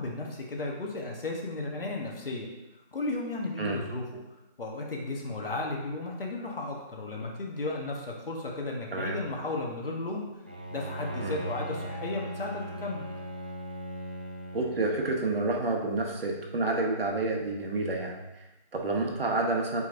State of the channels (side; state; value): both; inverted; correlation -0.33